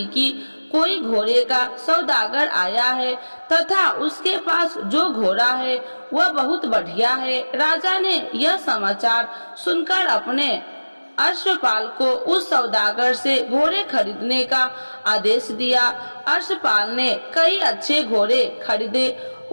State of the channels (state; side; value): inverted; both; correlation -1.00